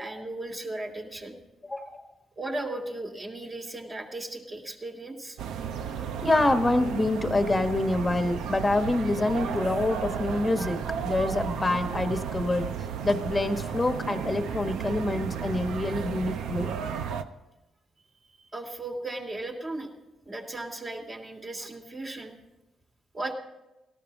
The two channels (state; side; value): normal; both; correlation 0.84